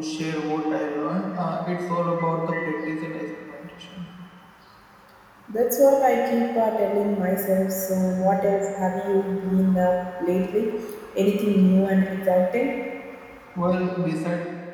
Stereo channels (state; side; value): identical; both; correlation 1.00